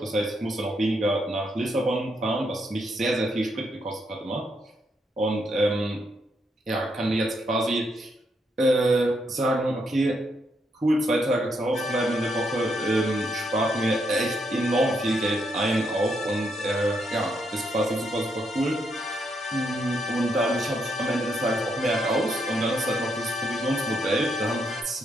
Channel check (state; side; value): normal; both; correlation 0.77